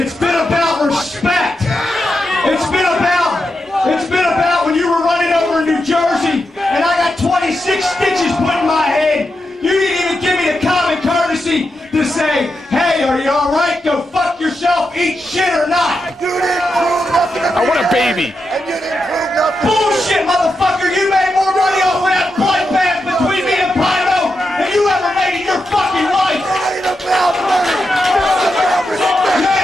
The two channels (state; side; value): normal; both; correlation 0.87